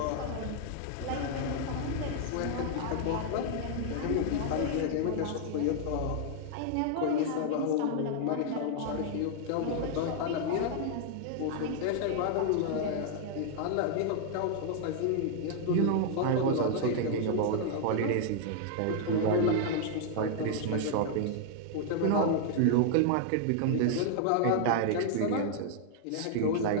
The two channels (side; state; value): both; different; correlation -0.01